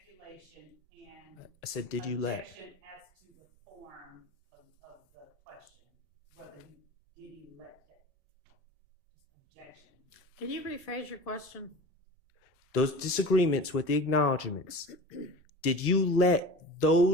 and. I said, did you let? Objection as to the form of the question, whether did you let that? Objection. Can you rephrase your question? Those disagreements with the acknowledgments, did you let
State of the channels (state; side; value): normal; both; correlation 0.35